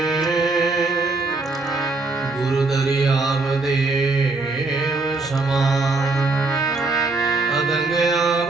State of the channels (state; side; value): quieter; left; 3.5 dB